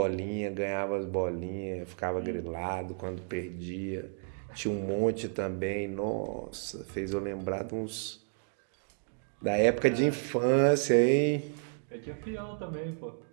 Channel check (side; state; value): left; silent; 57 dB below the other